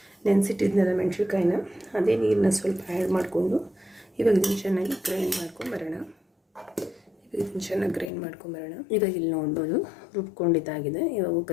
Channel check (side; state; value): right; drops out; at 8.1 s